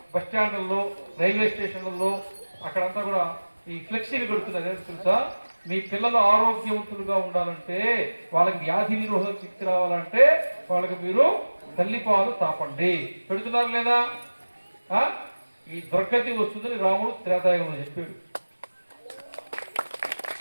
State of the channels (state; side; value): inverted; both; correlation -1.00